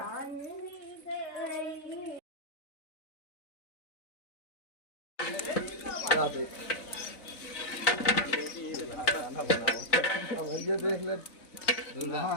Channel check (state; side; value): late; right; 3.9 ms